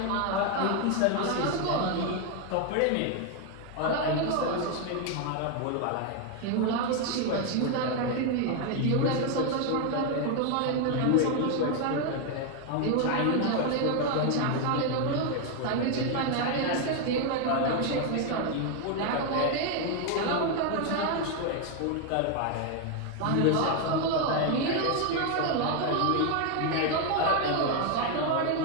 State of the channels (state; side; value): different; both; correlation 0.01